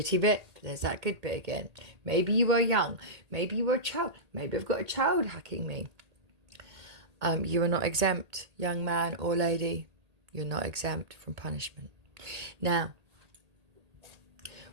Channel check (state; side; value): late; left; 1.8 ms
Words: bit. There's that good bit again. Maybe you were young. Maybe you were a child. Maybe I've got a child hacking me. You are not exempt, young man or lady. You're not exempt from punishment. Now,